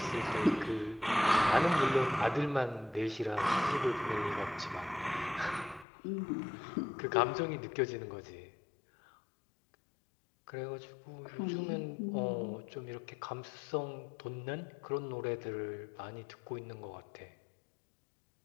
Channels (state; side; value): drops out; right; at 5.9 s